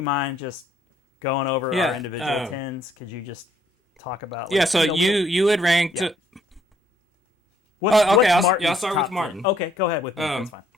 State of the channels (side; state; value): both; normal; correlation 0.66